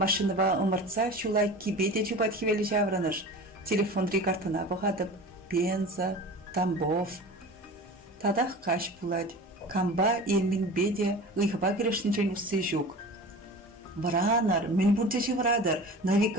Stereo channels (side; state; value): both; normal; correlation 0.36